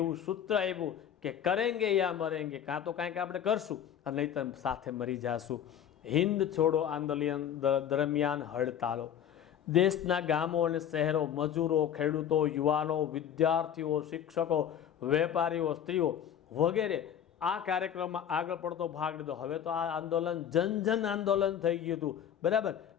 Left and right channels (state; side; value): quieter; right; 9.3 dB